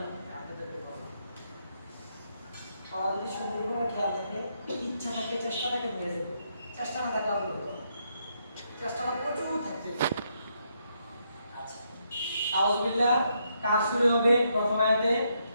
আপনাদেরকে বলবো যদি সুন্দরভাবে খেয়াল থাকে ইচ্ছা থাকে চেষ্টাটাকে বেড়ে যাবে চেষ্টা না থাকে আপনি চেষ্টাটা প্রচুর থাকতে আচ্ছা আউযুবিল্লাহ কাজ শুরু হবে প্রথম আয়াতে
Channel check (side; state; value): both; inverted; correlation -0.77